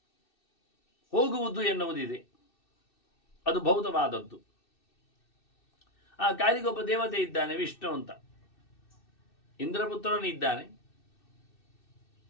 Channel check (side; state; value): right; late; 2.6 ms